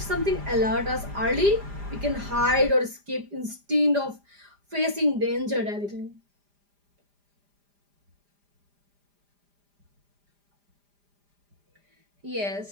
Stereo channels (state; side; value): late; left; 5.0 ms